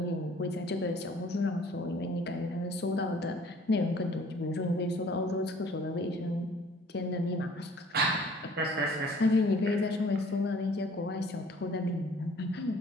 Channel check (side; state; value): both; normal; correlation 0.54